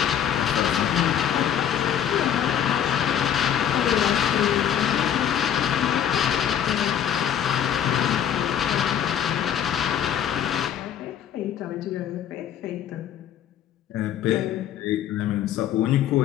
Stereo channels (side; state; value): right; quieter; 9.5 dB